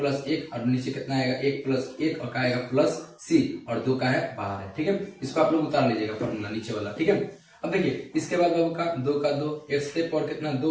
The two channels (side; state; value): both; identical; correlation 1.00